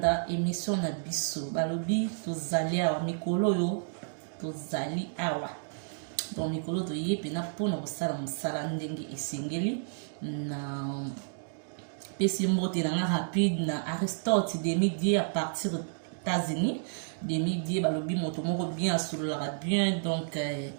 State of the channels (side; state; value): left; silent; digital silence